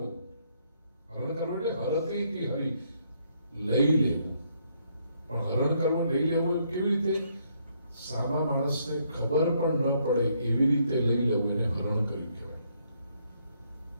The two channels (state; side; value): inverted; both; correlation -0.72